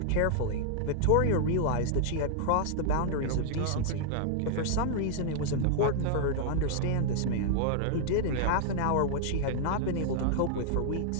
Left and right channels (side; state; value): both; different; correlation -0.01